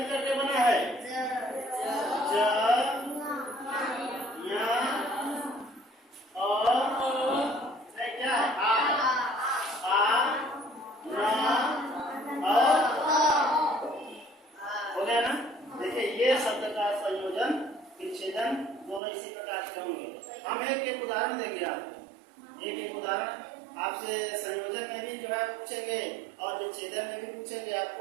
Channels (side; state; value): left; drops out; at 19.0 s